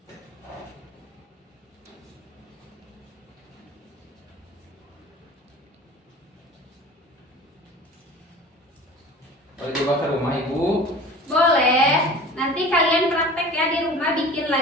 Boleh coba ke rumah Ibu? Boleh. Nanti kalian praktek ya di rumah, bikin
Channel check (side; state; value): both; normal; correlation 0.41